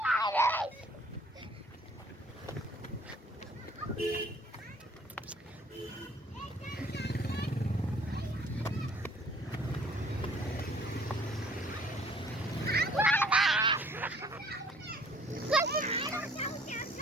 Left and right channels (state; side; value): normal; both; correlation 0.56